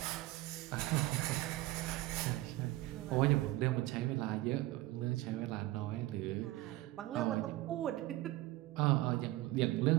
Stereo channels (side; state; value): left; quieter; 17.9 dB